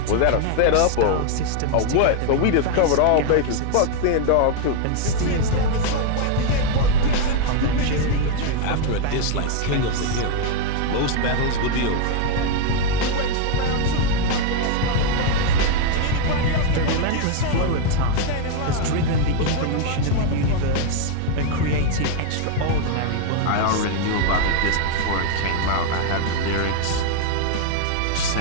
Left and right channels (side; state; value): both; different; correlation 0.00